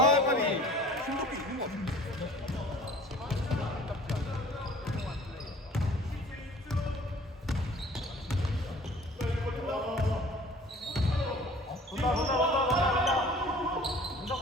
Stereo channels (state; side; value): normal; both; correlation 0.48